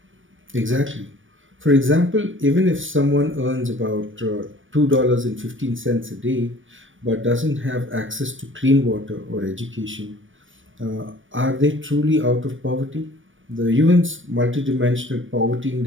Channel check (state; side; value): late; left; 0.57 ms